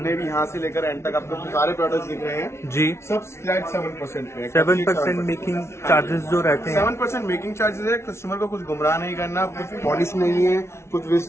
भी यहाँ से लेकर एंड तक आपको सारे प्रोडक्ट्स दिख रहे हैं जी, सब फ्लैट 7% पे। 7% मेकिंग चार्जेस जो रहते हैं। 7% मेकिंग चार्जेस है। कस्टमर को कुछ गुमराह नहीं करना, कुछ पॉलिश नहीं है, कुछ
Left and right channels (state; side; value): late; right; 0.13 ms